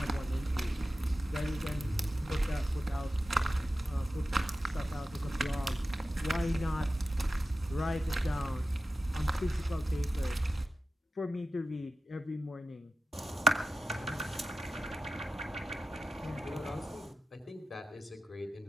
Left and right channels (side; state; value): both; normal; correlation 0.92